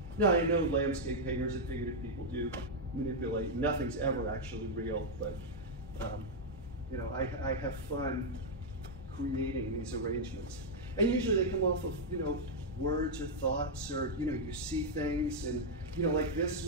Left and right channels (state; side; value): normal; both; correlation -0.02